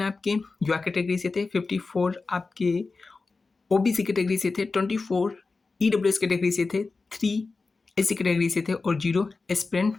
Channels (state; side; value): quieter; right; 4.0 dB